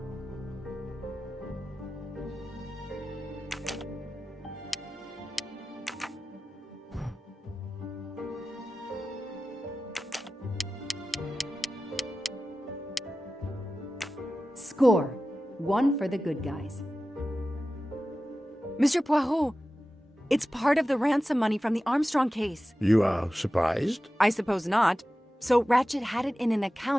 Score. 1 for the good guys. Mr. Poirot, it's part of the ransom money from the Armstrong case. You are surprised? I suppose not. So Ratchet had it in an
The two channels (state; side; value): normal; both; correlation 0.95